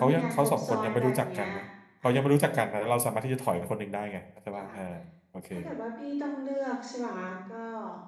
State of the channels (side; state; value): both; identical; correlation 1.00